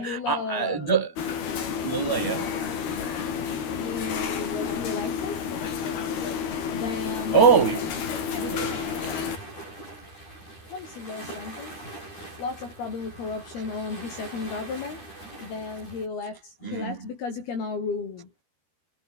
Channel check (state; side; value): late; right; 13 ms